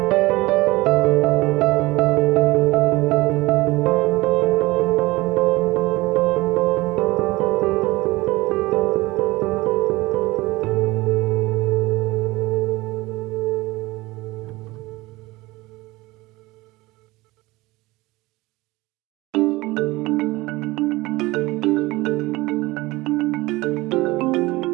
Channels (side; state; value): left; quieter; 20.7 dB